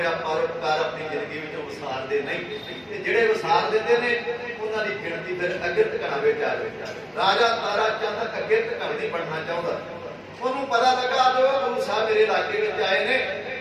ਪਰਉਪਕਾਰ ਆਪਣੀ ਜ਼ਿੰਦਗੀ ਵਿੱਚ ਵਿਸਾਰਦੇ ਨਹੀਂ, ਤੇ ਜਿਹੜੇ ਵਿਸਾਰ ਦਿੰਦੇ ਨੇ ਉਹਨਾਂ ਦੀ ਗਿਣਤੀ ਫਿਰ ਅੱਗੇ ਟਿਕਾਣਾ ਵਿੱਚ ਆ ਜਾਵੇ। ਰਾਜਾ ਤਾਰਾ ਚੰਦ ਅੱਗੇ ਟਿਕਾਣਾ ਨਹੀਂ ਬਣਨਾ ਚਾਹੁੰਦਾ। ਉਹਨੂੰ ਪਤਾ ਲੱਗਾ ਜੋ ਗੁਰੂ ਸਾਹਿਬ ਮੇਰੇ ਇਲਾਕੇ ਵਿੱਚ ਆਏ ਨੇ,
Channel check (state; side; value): identical; both; correlation 1.00